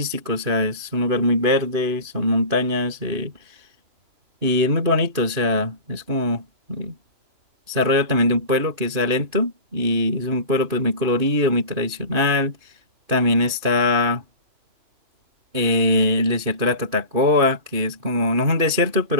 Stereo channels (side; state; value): left; late; 2.5 ms